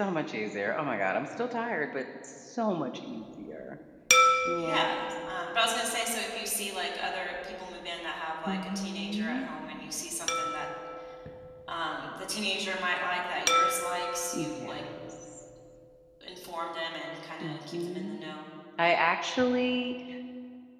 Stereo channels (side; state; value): both; identical; correlation 1.00